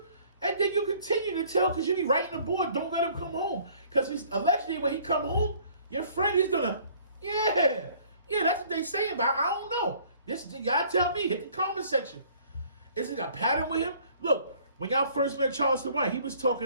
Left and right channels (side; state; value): both; inverted; correlation -0.56